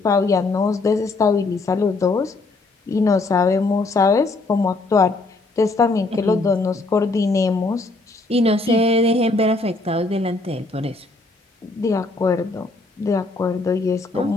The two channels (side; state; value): right; quieter; 3.3 dB